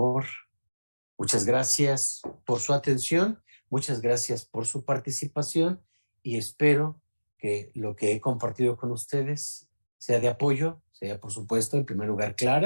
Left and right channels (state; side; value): inverted; both; correlation -1.00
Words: Muchas gracias por su atención, muchas gracias por su participación y espero que lo que he compartido con ustedes sea de apoyo, sea por supuesto en primer lugar